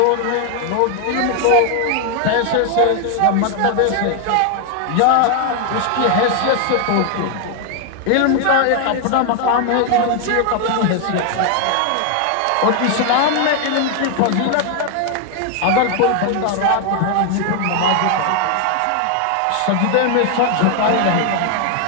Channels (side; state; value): both; different; correlation 0.00